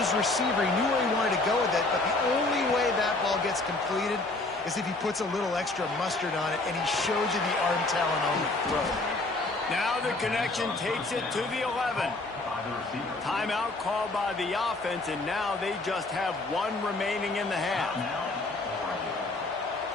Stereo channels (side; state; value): right; quieter; 3.0 dB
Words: receiver. He knew where he wanted to go with it, but the only way that ball gets completed is if he puts a little extra mustard on it, and he shows you the arm talent on the throw. Now the connection takes it to the 11. Timeout called by the offense, and now they just have one remaining in the half.